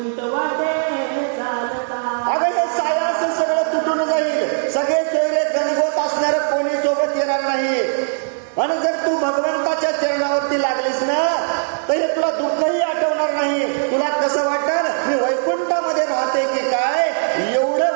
वाटे चालता. अगं हे सायास सगळं तुटून जाईल, सगळे सोयरे गणगोत असणार, कोणी सोबत येणार नाही. आणि जर तू भगवंताच्या चरणावरती लागलीस ना तर हे तुला दुःखही आठवणार नाही. तुला कसं वाटल, मी वैकुंठामध्ये राहते की काय, एवढं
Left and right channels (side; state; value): left; silent; digital silence